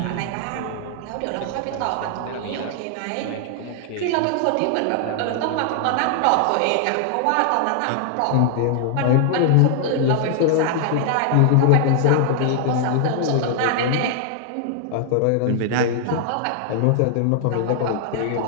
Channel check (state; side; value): different; both; correlation 0.00